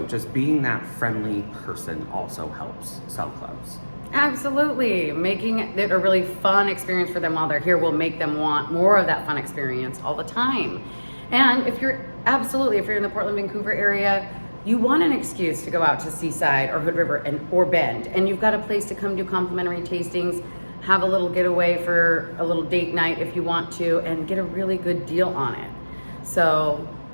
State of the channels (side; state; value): both; inverted; correlation -1.00